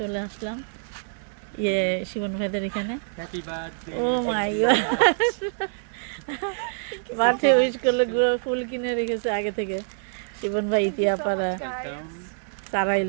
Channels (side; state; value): left; silent; 61 dB below the other